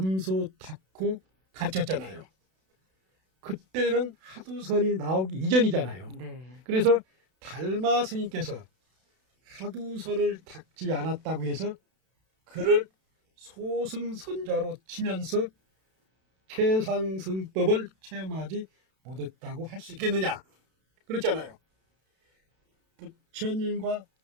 닦고 가르쳤잖아요. 그때는 하두선이 나오기 이전이잖아요. 네. 그래서 달마 스님께서 하두선을 닦지 않았다고 해서 그를 소승선자로 치면서 최상승법을 체험하지 못했다고 할 수 있겠느냐? 그렇잖아요. 부처님과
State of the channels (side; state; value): left; late; 32 ms